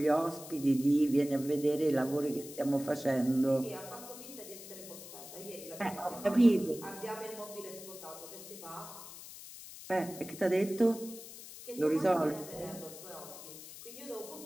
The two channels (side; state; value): left; noise; hiss, 14 dB below the sound